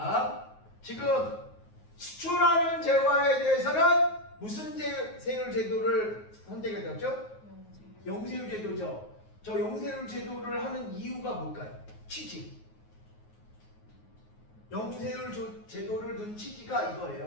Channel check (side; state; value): right; late; 9.4 ms